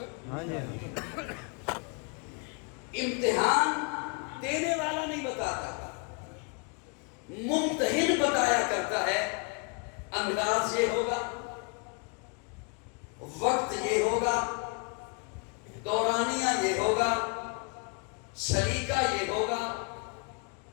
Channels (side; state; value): right; quieter; 34.3 dB